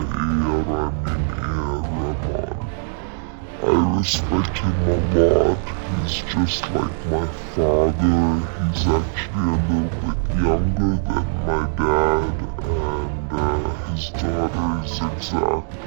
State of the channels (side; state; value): left; silent; digital silence